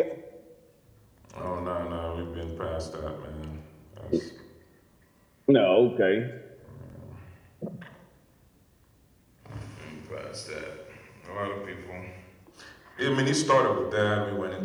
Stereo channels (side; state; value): both; identical; correlation 1.00